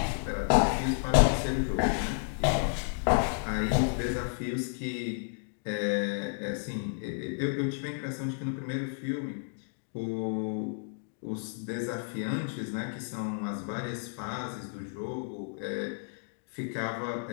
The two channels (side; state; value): right; silent; digital silence